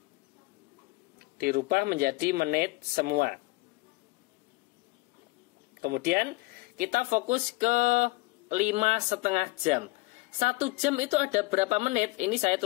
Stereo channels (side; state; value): right; quieter; 23.5 dB